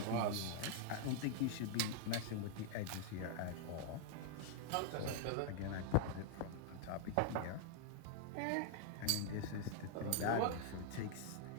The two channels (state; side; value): different; both; correlation 0.00